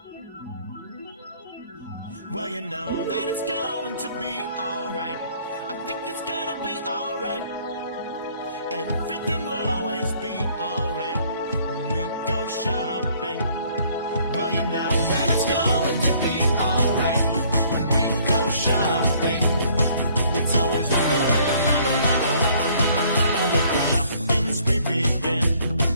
Well, you know that it's going to be alright. I think it's gonna be alright. Everything will always be alright when we go shopping. Well, you know that it's going to be alright when we go shopping. It's always la la la la la la la la la. Let the shopping spree begin.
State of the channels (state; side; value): inverted; both; correlation -0.60